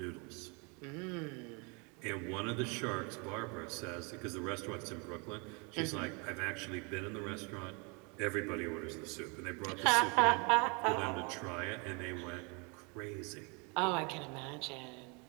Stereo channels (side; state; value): left; quieter; 31.9 dB